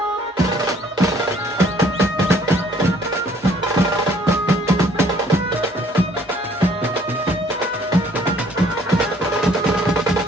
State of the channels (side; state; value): both; normal; correlation 0.59